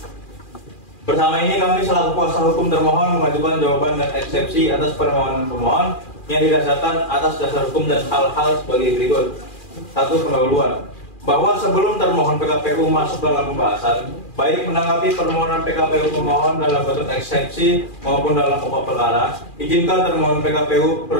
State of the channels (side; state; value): right; late; 2.4 ms